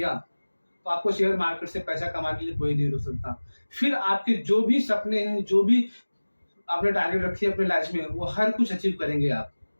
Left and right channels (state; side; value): inverted; both; correlation -1.00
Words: तो आपको शेयर मार्केट से पैसा कमाने के लिए कोई नहीं रोक सकता। फिर आपके जो भी सपने हैं, जो भी आपने टारगेट रखी है अपने लाइफ में, वो हर कुछ अचीव करेंगे आप।